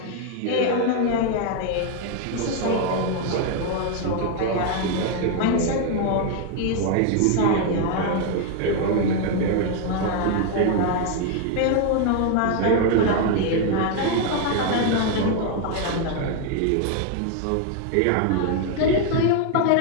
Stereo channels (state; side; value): different; both; correlation 0.01